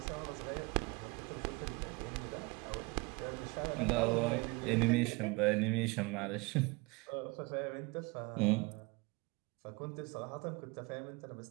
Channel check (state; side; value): quieter; left; 26.6 dB